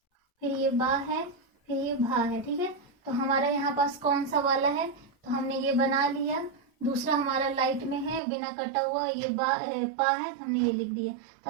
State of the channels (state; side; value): drops out; left; at 8.2 s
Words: फिर ये बा है, फिर ये भा है। ठीक है। तो हमारा यहाँ पास कौन सा वाला है, तो हमने ये बना लिया। दूसरा हमारा लाइट में है बिना कटा हुआ, ये पा है, तो हमने ये लिख दिया।